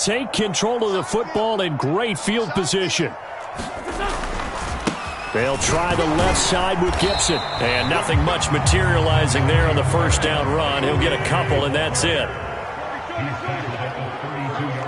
control of the football in great field position. They'll try the left side with Gibson. And nothing much materializing there on the 1st down run. He'll get a couple, and that's it.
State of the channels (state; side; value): identical; both; correlation 1.00